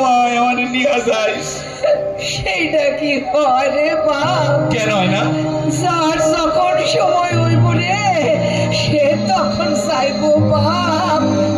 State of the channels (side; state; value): both; identical; correlation 1.00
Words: আমারে নিয়ে যাইস। সেইটা কি হয় রে বাপ? কেন হয় না? যার যখন সময় হইব রে সে তখন যাইবো বাপ,